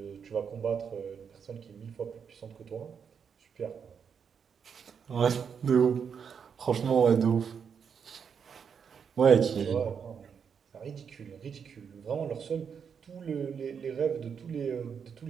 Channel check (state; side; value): quieter; left; 6.9 dB